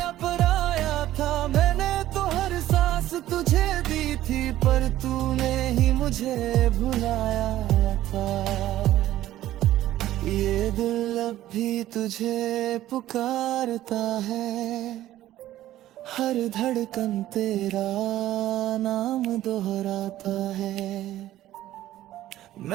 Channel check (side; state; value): left; quieter; 14.0 dB